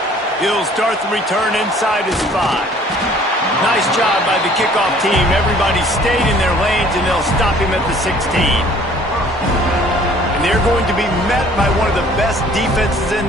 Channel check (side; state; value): both; normal; correlation 0.55